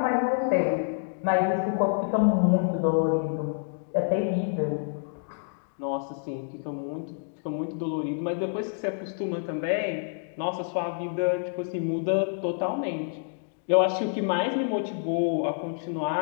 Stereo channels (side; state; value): right; silent; digital silence